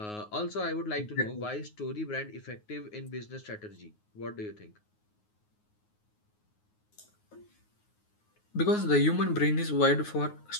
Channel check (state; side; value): late; right; 9.5 ms